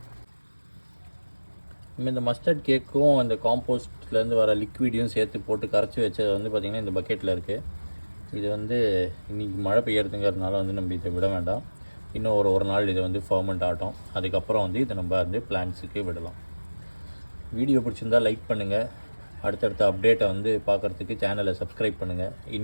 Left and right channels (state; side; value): inverted; both; correlation -1.00